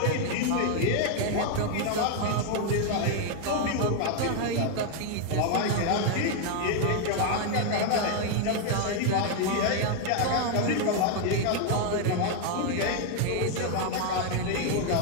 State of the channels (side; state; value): both; different; correlation 0.00